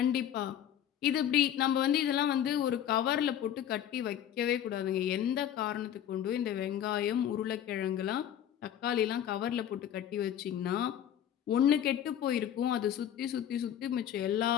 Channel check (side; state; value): right; quieter; 10.2 dB